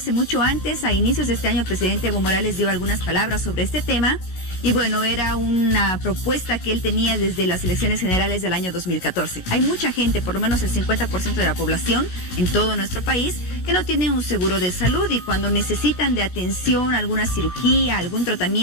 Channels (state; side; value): late; right; 16 ms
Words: mucho antes. A inicios de este año, el presidente Evo Morales dio algunas palabras sobre este tema. Y bueno, era una propuesta que él tenía desde las elecciones generales del año 2014. Hay mucha gente, por lo menos el 50% de la población en todo nuestro país, que no tiene un seguro de salud, y cuando necesitan de atención, alguna cirugía, algún